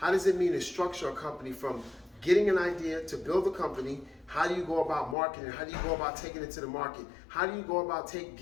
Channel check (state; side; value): drops out; right; at 5.2 s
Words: does it mean to structure a company from getting an idea to build a company? How do you go about marketing? How do you go about taking it to the market? How do you go about